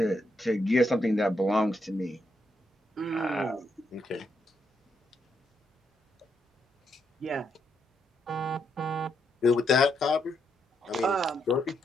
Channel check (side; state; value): both; normal; correlation 0.79